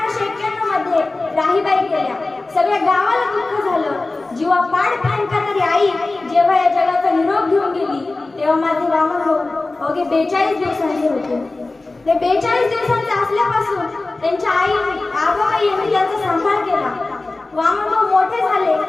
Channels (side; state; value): right; quieter; 3.2 dB